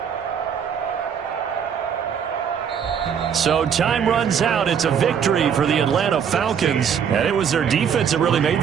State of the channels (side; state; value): left; quieter; 7.7 dB